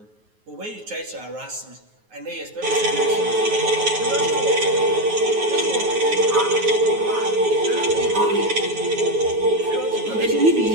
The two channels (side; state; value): left; late; 9.4 ms